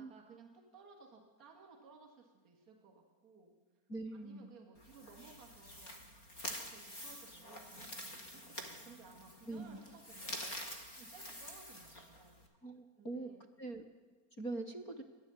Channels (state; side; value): late; right; 4.3 ms